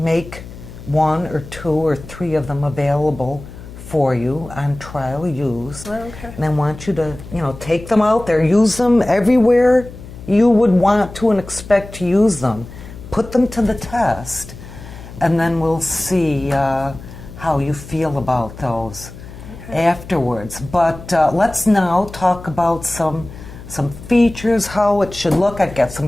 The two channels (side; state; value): left; noise; hum, 15 dB below the sound